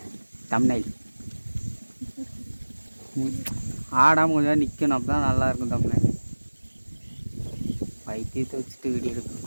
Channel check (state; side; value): inverted; both; correlation -1.00